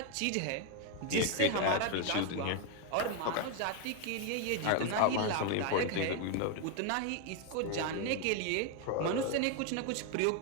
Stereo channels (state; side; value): different; both; correlation 0.01